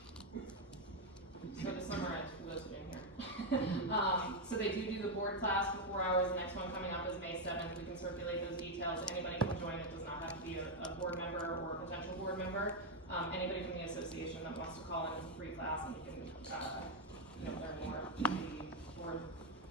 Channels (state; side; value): normal; both; correlation 0.03